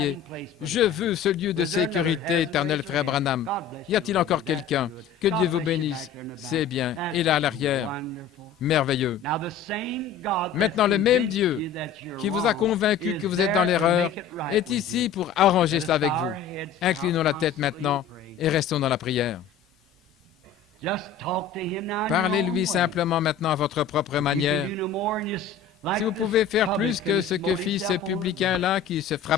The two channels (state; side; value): quieter; right; 6.7 dB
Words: Je veux ce lieu de sécurité éternelle, frère Branham. Y a-t-il encore quelqu'un? Que Dieu vous bénisse. C'est bien. Et là, à l'arrière. Merveilleux. Maintenant, le même Dieu qui vous a convaincu que vous êtes dans l'erreur est ici pour arranger cela avec vous. Inclinons la tête maintenant et restons dans la prière. Parlez-lui simplement maintenant à votre propre manière. Si vous pouvez faire plus que ce que fit ce publicain-là qui se